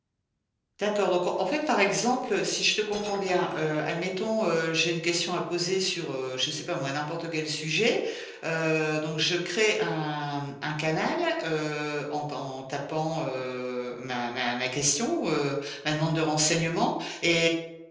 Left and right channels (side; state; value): both; identical; correlation 1.00